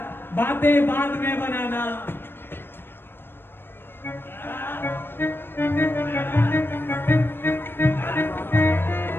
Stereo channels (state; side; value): late; right; 0.10 ms